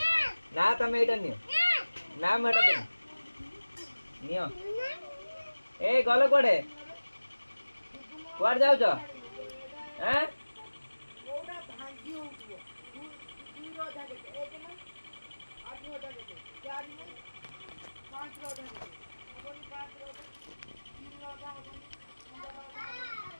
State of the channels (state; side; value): inverted; both; correlation -1.00